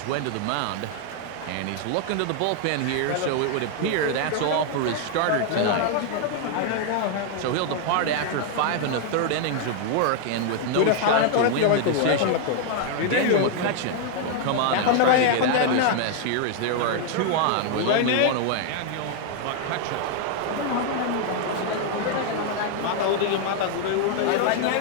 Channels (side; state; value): both; different; correlation 0.00